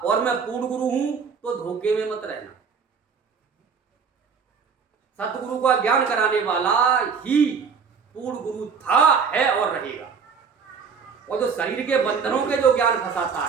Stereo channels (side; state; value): left; quieter; 5.9 dB